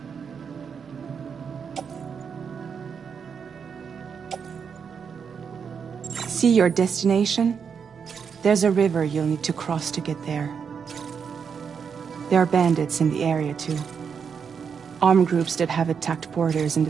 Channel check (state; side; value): quieter; left; 6.6 dB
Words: See your destination? There's a river you'll need to cross to get there. There are bandits in the area too. Armed groups that have attacked borders in the